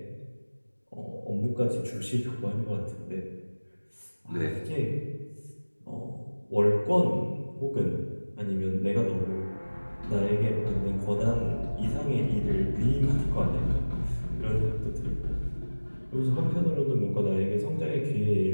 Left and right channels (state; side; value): inverted; both; correlation -1.00